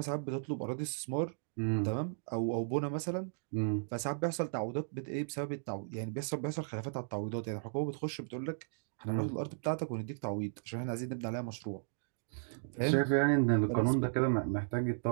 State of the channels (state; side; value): silent; left; digital silence